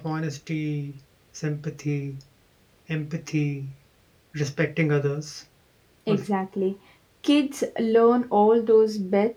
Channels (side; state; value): both; identical; correlation 1.00